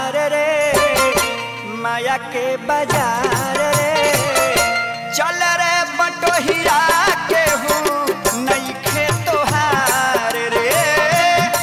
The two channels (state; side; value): identical; both; correlation 1.00